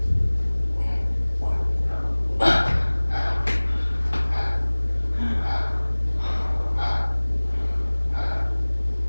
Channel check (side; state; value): both; inverted; correlation -1.00